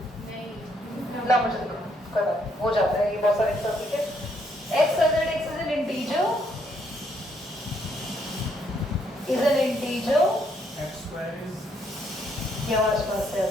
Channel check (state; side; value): normal; both; correlation 0.72